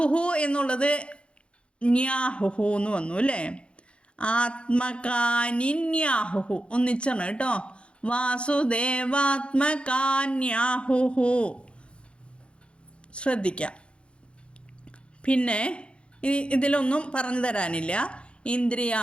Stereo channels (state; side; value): late; right; 0.057 ms